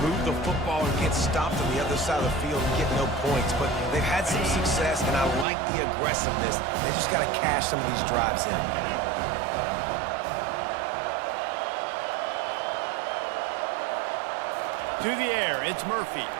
move the football and get stopped on the other side of the field and get no points. But they've had some success, and I like the aggressiveness. They just got to cash some of these drives in. To the air, it's Murphy.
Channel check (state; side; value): drops out; left; at 5.5 s